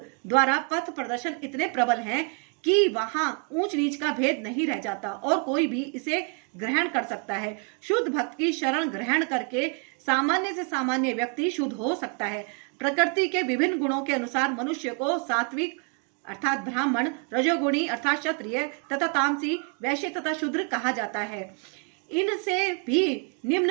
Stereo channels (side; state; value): left; quieter; 38.1 dB